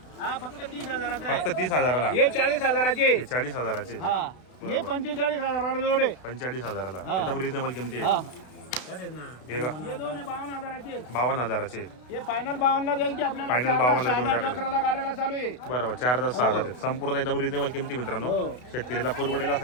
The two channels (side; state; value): right; late; 32 ms